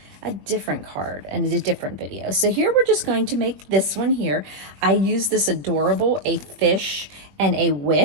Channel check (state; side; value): late; left; 21 ms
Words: a different card and a different video. So here we're just going to make this one here. I use this adorable a fish and a